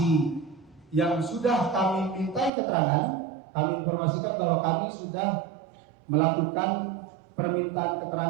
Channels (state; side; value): drops out; left; at 2.5 s